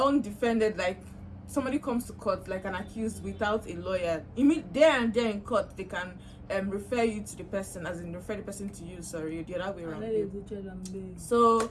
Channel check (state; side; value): identical; both; correlation 1.00